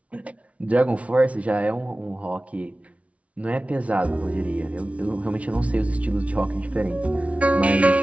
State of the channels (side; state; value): left; late; 0.065 ms